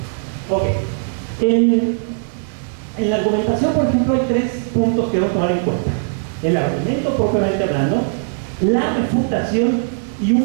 Ok. En la argumentación, por ejemplo, hay 3 puntos que debemos tomar en cuenta. El argumento propiamente hablando, la refutación y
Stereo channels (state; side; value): silent; left; digital silence